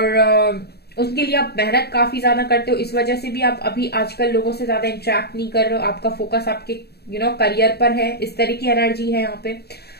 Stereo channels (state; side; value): late; right; 0.47 ms